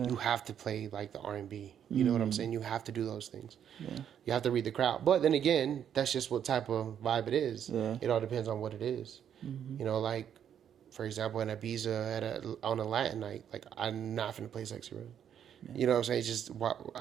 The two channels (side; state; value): left; quieter; 9.1 dB